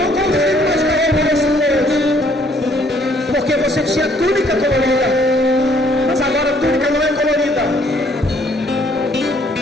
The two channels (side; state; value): both; normal; correlation 0.64